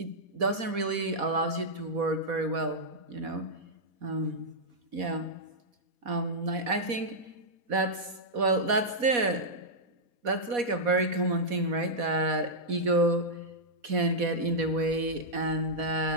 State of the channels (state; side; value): late; left; 4.2 ms